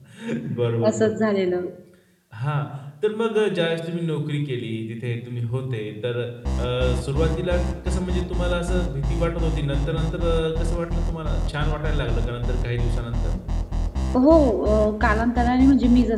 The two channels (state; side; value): identical; both; correlation 1.00